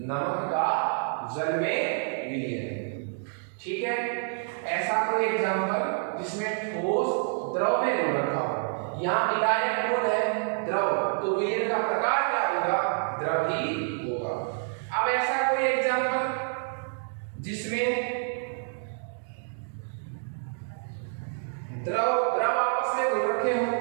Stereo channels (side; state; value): left; silent; digital silence